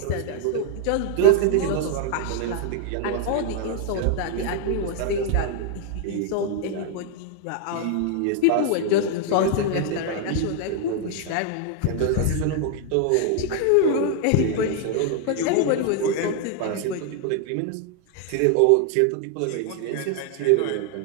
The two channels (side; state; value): both; different; correlation 0.00